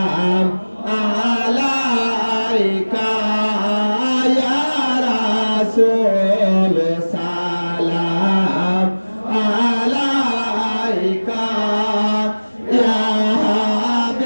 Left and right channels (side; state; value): both; inverted; correlation -1.00